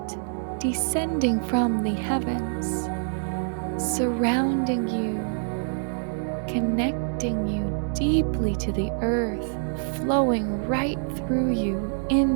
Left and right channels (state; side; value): silent; left; digital silence